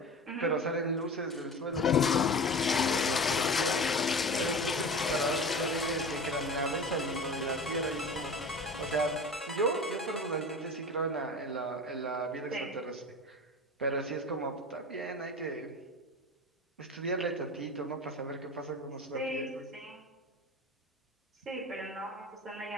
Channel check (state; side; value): normal; both; correlation 0.33